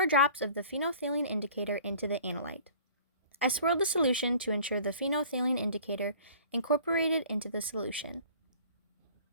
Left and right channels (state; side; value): inverted; both; correlation -0.48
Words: drops of the phenolphthalein indicator into the analyte. I swirled the solution to ensure the phenolphthalein indicator incorporated into the solution.